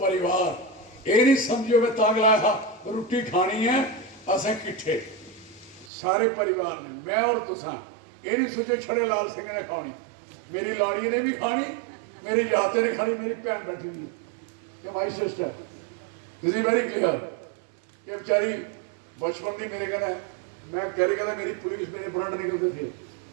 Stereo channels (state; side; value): drops out; left; at 5.9 s